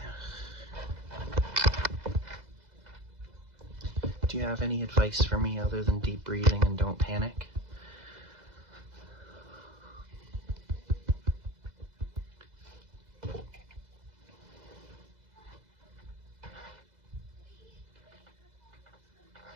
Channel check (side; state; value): left; late; 2.0 ms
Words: Do you have any advice for me other than deep breathing and don't panic?